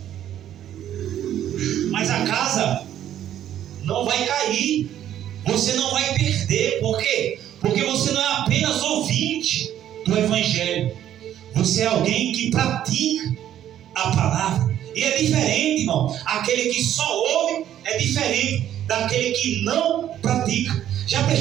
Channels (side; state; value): left; quieter; 11.2 dB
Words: mas a casa não vai cair, você não vai perder. Por quê? Porque você não é apenas ouvinte do Evangelho, você é alguém que pratica a palavra. E é diferente, irmão. Aquele que só ouve é diferente daquele que não pratica. Já